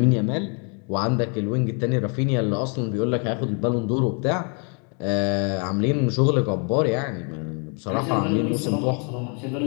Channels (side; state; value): right; quieter; 38.0 dB